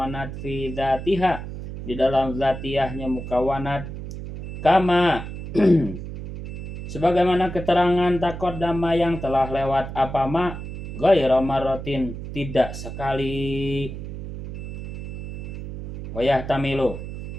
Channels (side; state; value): right; noise; hum, 8 dB below the sound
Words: fi zatiha di dalam zatiyahnya mukawanat kama sebagaimana keterangan taqaddama yang telah lewat apa ma ghairu marratin tidak sekali wayah tamilu